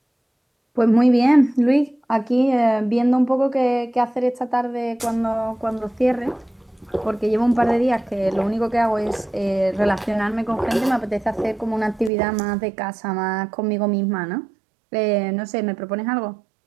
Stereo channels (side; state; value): left; drops out; at 12.1 s